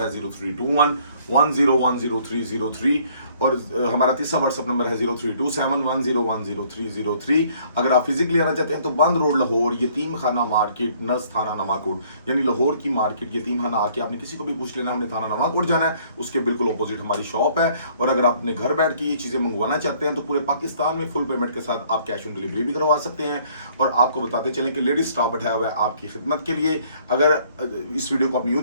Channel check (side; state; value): both; inverted; correlation -0.61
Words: है 032110100303 और हमारा तीसरा व्हाट्सएप नंबर है 032710100303। अगर आप फिजिकली आना चाहते हैं तो बंद रोड लाहौर, यतीम खाना मार्केट, नस थाना नवाकोट, यानी लाहौर की मार्केट यतीम खाना आके आपने किसी को भी पूछ लेना, हमने थाना नवाकोट जाना है, उसके बिल्कुल अपोजिट हमारी शॉप है। और अगर आप अपने घर बैठ के ये चीज़ें मंगवाना चाहते हैं तो पूरे पाकिस्तान में फुल पेमेंट के साथ आप कैश ऑन डिलीवरी भी करवा सकते हैं। और आपको बताते चलें कि लेडीज स्टाफ बैठाया हुआ है आपकी खिदमत के लिए। अगर इस वीडियो को आप न्यू